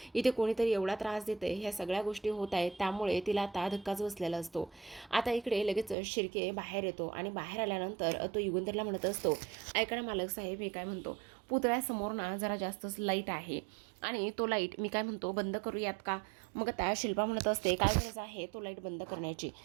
इथे कोणीतरी एवढा त्रास देते, ह्या सगळ्या गोष्टी होत आहेत, त्यामुळे तिला आता धक्काच बसलेला असतो. आता इकडे लगेच शिर्के बाहेर येतो आणि बाहेर आल्यानंतर तो युगंधरला म्हणत असतो, ऐका ना मालक साहेब, हे काय म्हणतो, पुतळ्यासमोर ना जरा जास्तच लाईट आहे आणि तो लाईट मी काय म्हणतो बंद करूयात का. मग त्या शिल्पा म्हणत असते, काय गरज आहे तो लाईट बंद करण्याची,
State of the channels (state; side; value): drops out; left; at 6.0 s